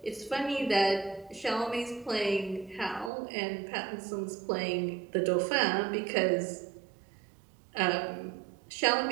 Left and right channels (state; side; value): drops out; left; at 3.1 s